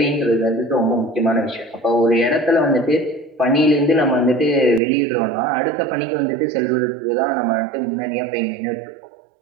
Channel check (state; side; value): drops out; left; at 4.8 s